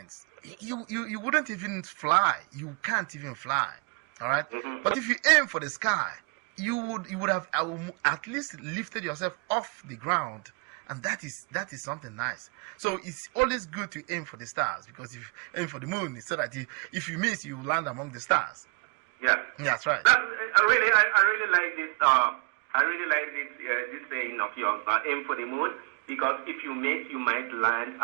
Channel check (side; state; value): left; quieter; 36.2 dB